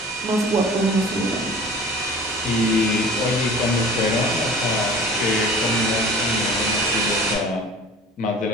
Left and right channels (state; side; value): normal; both; correlation 0.42